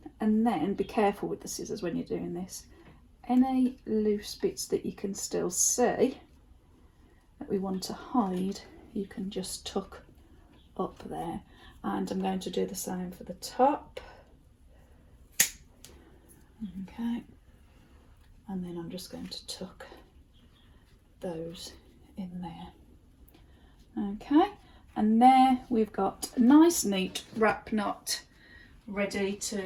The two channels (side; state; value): both; identical; correlation 1.00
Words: and then be careful with the scissors when you're doing this. Any loose bits that you can still see that we want to hide, you can just tuck up there, and I'm going to do the same for the top. Okay, and then I'm just going to tuck those in there. Okay, and there we've got a nice neat wrap knot ready